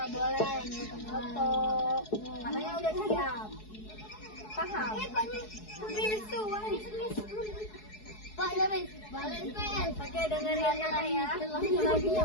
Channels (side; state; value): right; late; 4.7 ms